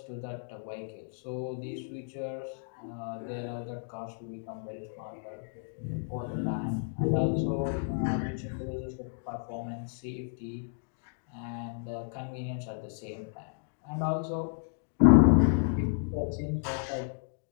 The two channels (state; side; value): silent; right; digital silence